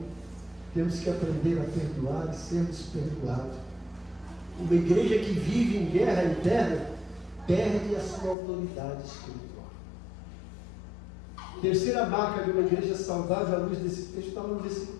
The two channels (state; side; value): drops out; right; at 8.3 s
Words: Temos que aprender a perdoar e sermos perdoados. Uma igreja que vive em guerra interna perde a sua autoridade espiritual. Terceira marca de uma igreja saudável, à luz desse texto, está no versículo